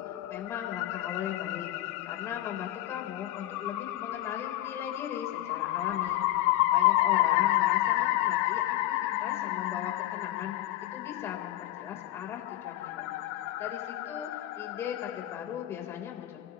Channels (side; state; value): right; quieter; 14.0 dB